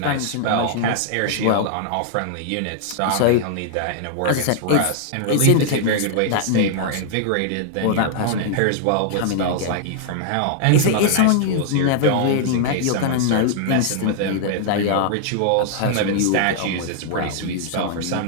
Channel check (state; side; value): different; both; correlation -0.01